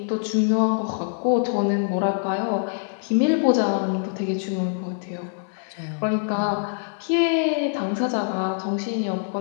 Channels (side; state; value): right; silent; digital silence